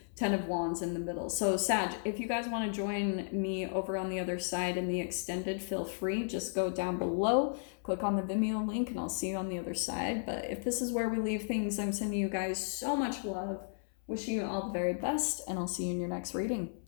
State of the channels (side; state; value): right; silent; 55 dB below the other